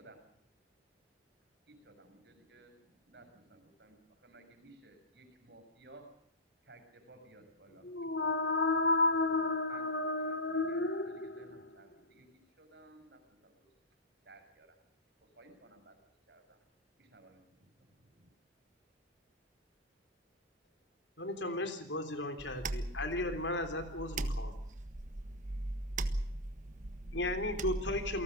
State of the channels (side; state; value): both; normal; correlation -0.04